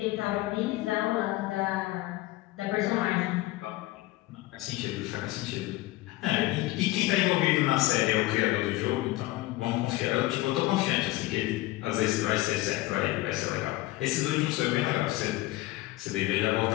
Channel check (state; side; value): quieter; right; 18.2 dB